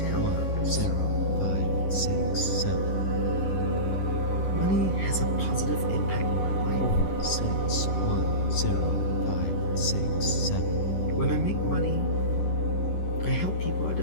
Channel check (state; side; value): late; right; 11 ms